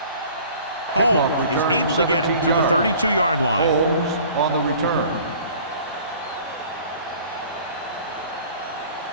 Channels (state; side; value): inverted; both; correlation -0.49